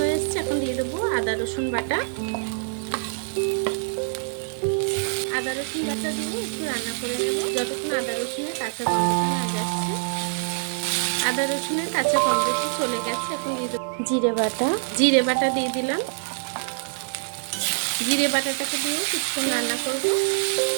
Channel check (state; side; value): silent; left; 62 dB below the other